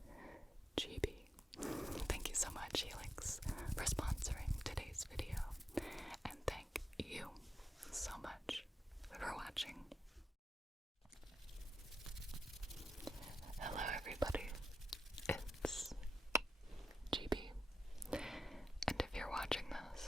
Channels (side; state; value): both; normal; correlation 0.87